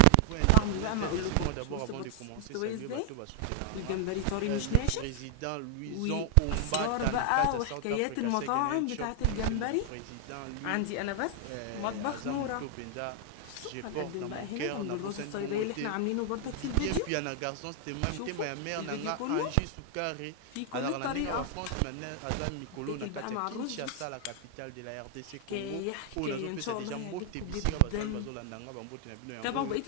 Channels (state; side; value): different; both; correlation 0.00